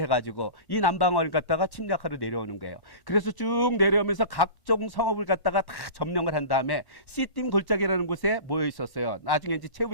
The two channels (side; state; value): right; late; 1.1 ms